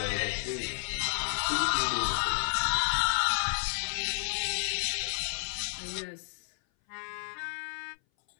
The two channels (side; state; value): right; silent; 57 dB below the other